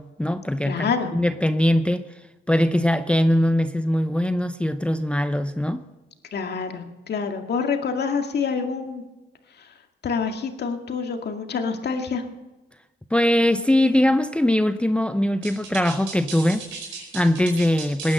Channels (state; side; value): normal; both; correlation 0.86